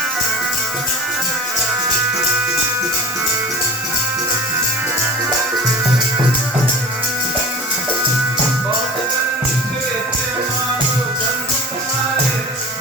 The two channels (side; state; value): both; normal; correlation 0.37